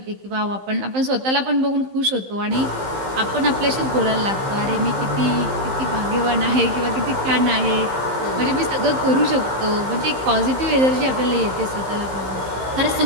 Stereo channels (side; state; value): left; late; 15 ms